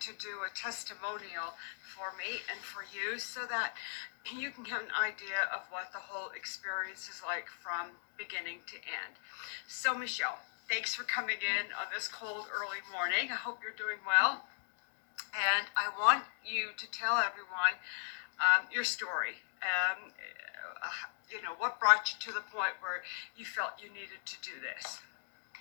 to do a testimonial for me and for you so that you can get an idea of what the whole experience is like from beginning to end. So, Michelle, thanks for coming in on this cold early morning. I hope you're doing well. And I want you to tell everyone your story. What brought you to the point where you felt you needed to do this?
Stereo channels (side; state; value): right; silent; digital silence